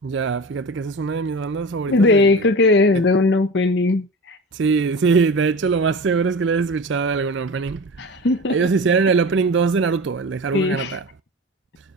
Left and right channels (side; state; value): both; normal; correlation 0.31